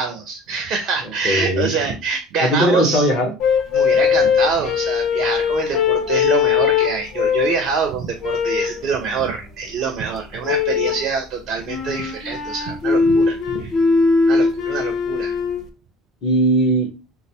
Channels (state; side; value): normal; both; correlation 0.43